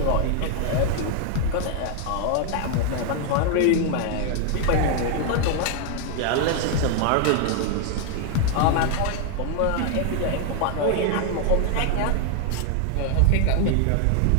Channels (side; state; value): both; different; correlation 0.00